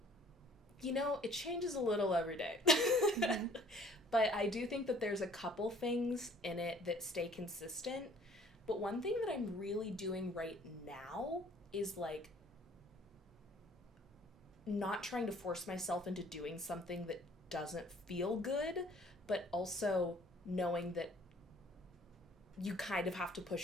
It changes a little every day. Mm-hmm. But I do think that there's a couple things in it that stay consistent. But one thing that I'm really doing right now is like not trying to force myself into doing something that doesn't feel good, but also knowing that you kind of have to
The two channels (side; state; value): both; normal; correlation 0.55